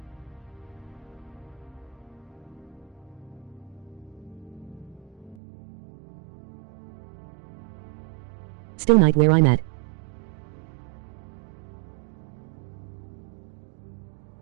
Still night where I'm at.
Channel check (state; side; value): drops out; left; at 5.4 s